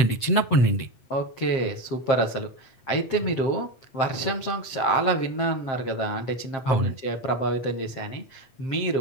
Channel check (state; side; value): late; right; 7.6 ms